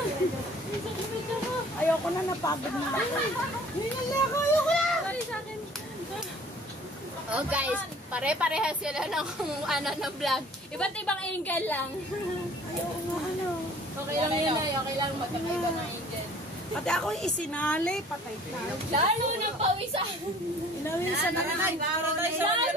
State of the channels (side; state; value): both; normal; correlation 0.51